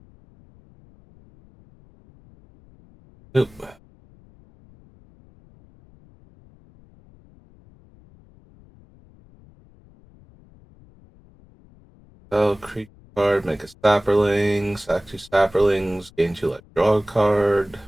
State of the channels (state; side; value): noise; left; rumble, 27 dB below the sound